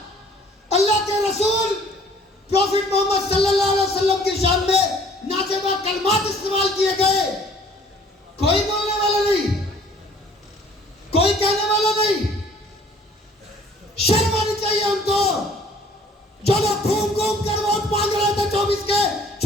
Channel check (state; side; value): normal; both; correlation 0.56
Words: अल्लाह के रसूल प्रॉफिट मोहम्मद सल्लल्लाहु अलैहि वसल्लम की शान में नाजेबा कलमात इस्तेमाल किए गए, कोई बोलने वाला नहीं, कोई कहने वाला नहीं। शर्म आनी चाहिए उनको, जो लोग घूम घूम कर वोट मांग रहे थे 24 के